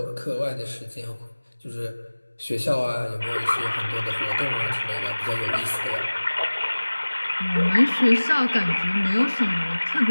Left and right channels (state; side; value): inverted; both; correlation -1.00